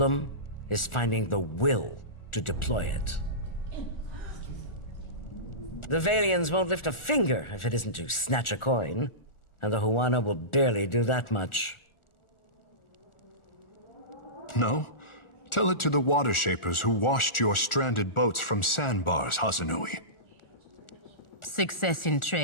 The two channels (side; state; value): right; late; 1.4 ms